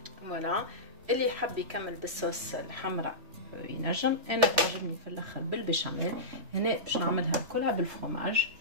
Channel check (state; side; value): late; left; 3.1 ms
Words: فوالا اللي يحب يكمل بالصوص الحمراء ينجم. انا تعجبني في الاخر بالبشاميل. هنا باش نعملها كلها بالفرomage.